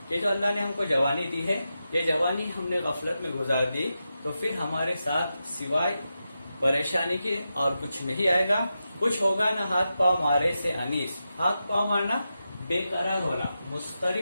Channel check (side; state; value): both; inverted; correlation -0.89